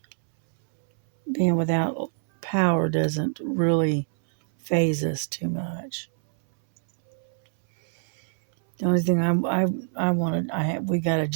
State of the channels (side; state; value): left; silent; 62 dB below the other